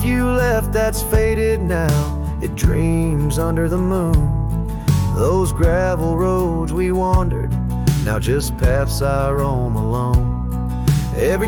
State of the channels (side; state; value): both; identical; correlation 1.00